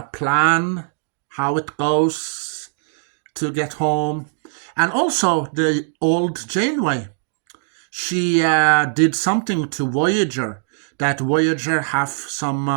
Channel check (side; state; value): left; silent; digital silence